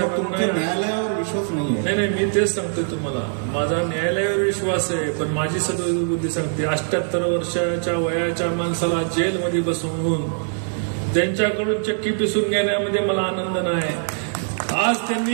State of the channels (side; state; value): left; silent; digital silence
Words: न्यायालयावर विश्वास नाही. नाही, मी तेच सांगतोय तुम्हाला, माझा न्यायालयावर विश्वास आहे, पण माझी सद्बुद्धी सांगते 78 वर्षाच्या वयाच्या माणसाला जेलमध्ये बसवून त्यांच्याकडून चक्की पिसून घेण्यामध्ये मला आनंद नाही. आज